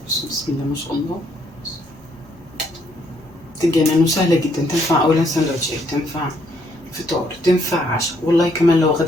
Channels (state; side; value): normal; both; correlation 0.70